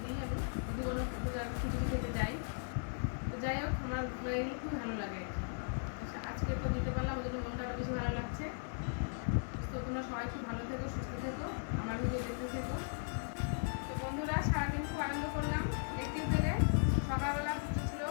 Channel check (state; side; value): silent; right; 53 dB below the other